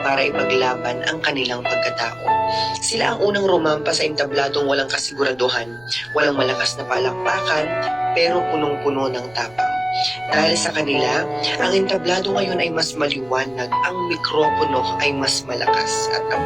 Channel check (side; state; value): left; noise; rumble, 26 dB below the sound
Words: ipaglaban ang kanilang pagkatao. Sila ang unang rumampa sa entabladong walang kasiguraduhan, walang malakas na palakpakan, pero punong-puno ng tapang. Dahil sa kanila, ang entablado ngayon ay mas maliwanag, ang mikropono ay mas malakas, at ang